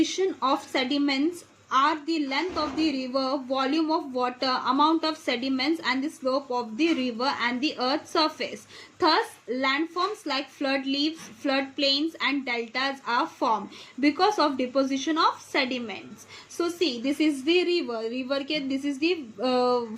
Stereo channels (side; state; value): both; identical; correlation 1.00